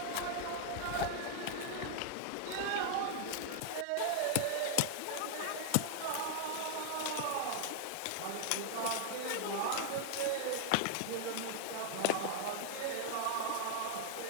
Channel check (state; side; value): different; both; correlation 0.00